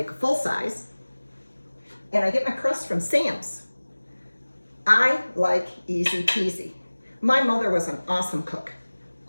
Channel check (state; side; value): inverted; both; correlation -1.00